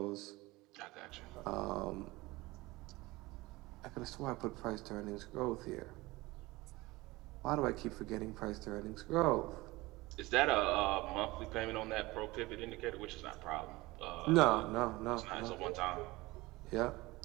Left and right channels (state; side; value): quieter; left; 20.9 dB